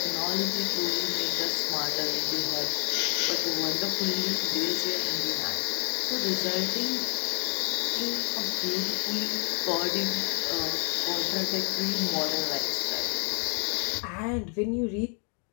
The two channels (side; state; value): right; quieter; 39.8 dB